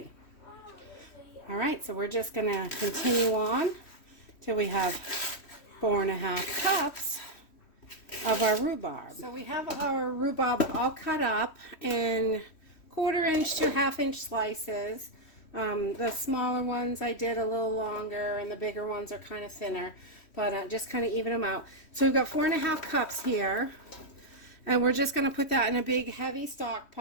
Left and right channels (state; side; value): late; right; 3.1 ms